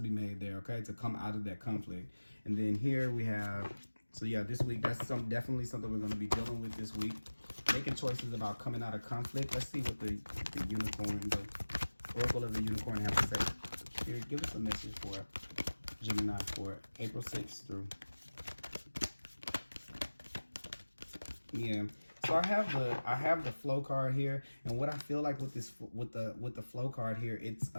made there, okay, to come out of that conflict. And then here we have, so yeah, this week, that's definitely something we're going to be dealing with this week. Making choices about coming out of conflict. Let's see what the unicorn, the oracle of the unicorn has to say. Here, give us a message for Gemini for April 6th through. Yeah. So I have the flow card here, and what I feel like with the flow card here, it's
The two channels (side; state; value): both; inverted; correlation -1.00